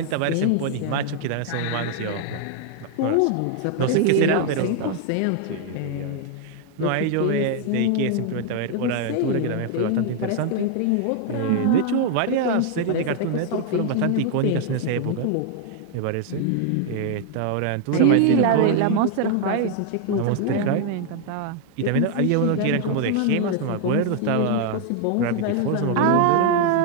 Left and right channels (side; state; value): both; different; correlation 0.00